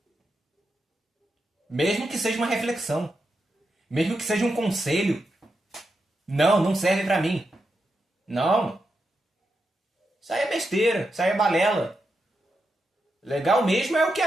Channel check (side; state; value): both; normal; correlation 0.86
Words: Mesmo que seja uma reflexão, mesmo que seja um conselho. Não, não serve pra mim. Não. Isso aí é besteira, isso aí é balela. Legal mesmo é o que